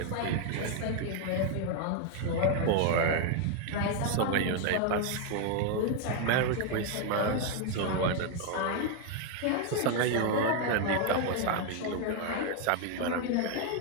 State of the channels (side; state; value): both; different; correlation 0.01